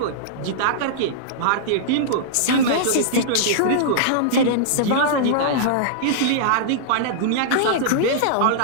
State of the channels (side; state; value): both; different; correlation -0.02